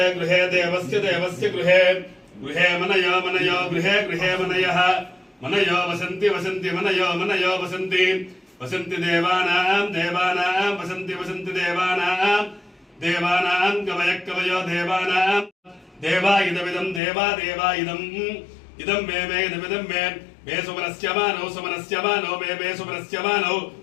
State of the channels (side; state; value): right; drops out; at 17.0 s